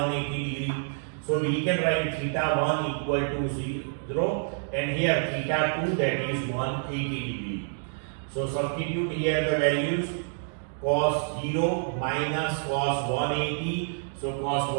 degree. So we can write theta 1 equal to 0 and here theta 2, that is 180 degree. So substitute here the values, cos 0 minus cos 180. So cos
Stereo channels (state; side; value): silent; left; digital silence